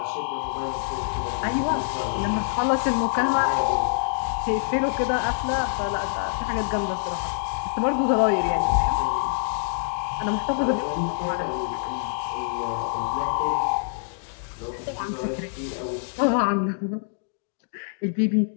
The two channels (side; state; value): right; silent; digital silence